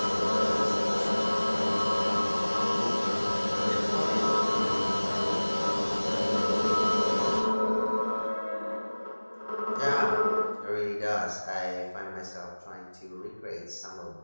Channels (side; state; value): both; inverted; correlation -1.00